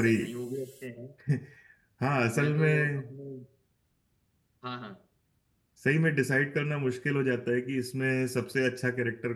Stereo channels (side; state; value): both; identical; correlation 1.00